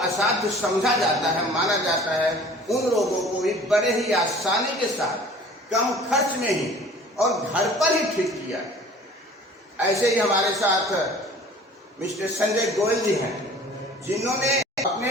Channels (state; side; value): normal; both; correlation 0.47